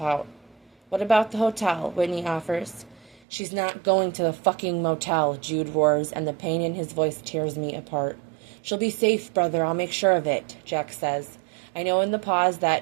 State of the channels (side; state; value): left; drops out; at 3.2 s